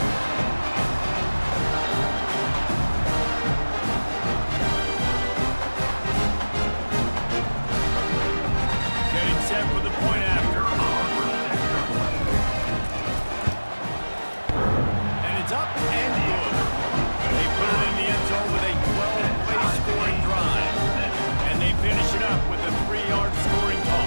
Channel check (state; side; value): inverted; both; correlation -1.00